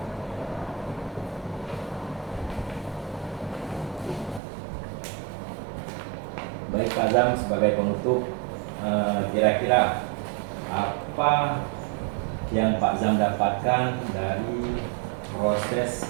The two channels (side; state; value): left; drops out; at 4.4 s